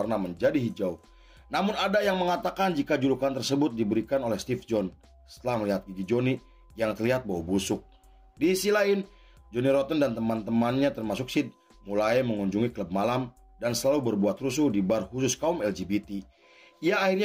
menjadi hijau. Namun ada yang mengatakan jika julukan tersebut diberikan oleh Steve John setelah melihat gigi Johnny yang terlihat bau busuk. Di sisi lain, Johnny Rotten dan teman-temannya termasuk Sid mulai mengunjungi klub malam dan selalu berbuat rusuh di bar khusus kaum LGBT. Ia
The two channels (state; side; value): identical; both; correlation 1.00